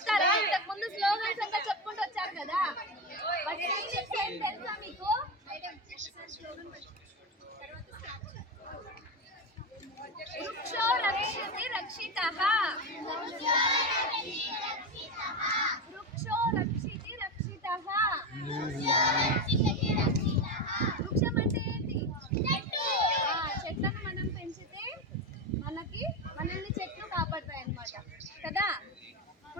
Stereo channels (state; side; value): normal; both; correlation 0.16